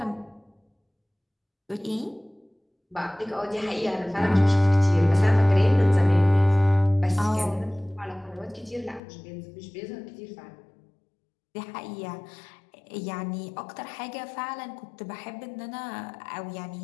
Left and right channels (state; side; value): drops out; right; at 9.0 s